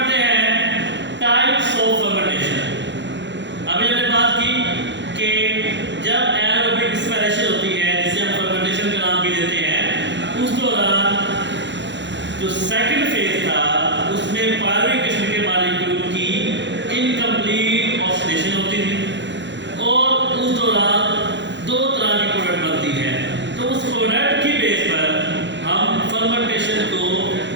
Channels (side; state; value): left; late; 0.52 ms